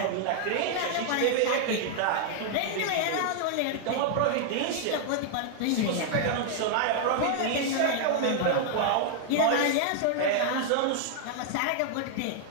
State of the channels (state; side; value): different; both; correlation 0.00